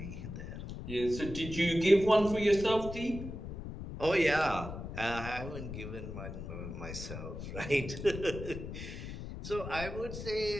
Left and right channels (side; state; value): left; noise; rumble, 8 dB below the sound